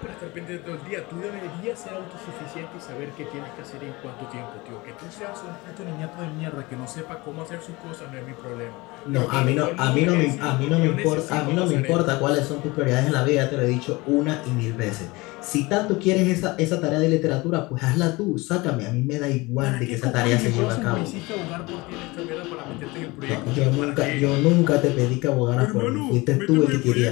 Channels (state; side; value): quieter; right; 23.0 dB